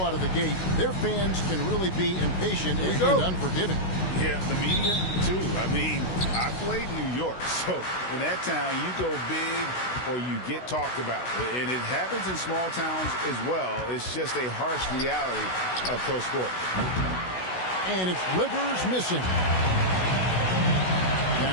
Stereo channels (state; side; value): late; right; 16 ms